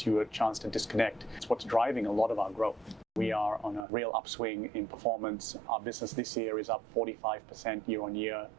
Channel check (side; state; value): left; drops out; at 3.9 s